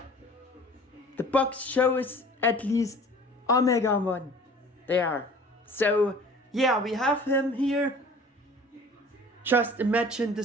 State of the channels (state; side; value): normal; both; correlation 0.46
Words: box shows at least Omegamon there. So yeah, we have him here. Just imagine